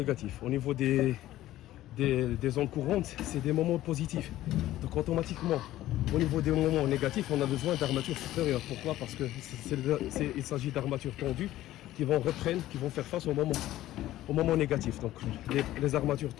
Au niveau des ondes courantes, c'est des moments positifs. Donc automatiquement, au niveau des moments négatifs, on a besoin d'armatures supérieures. Pourquoi? Parce qu'il s'agit d'armatures tendues qui vont faire face au moment négatif. Donc les armatures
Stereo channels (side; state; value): right; quieter; 14.6 dB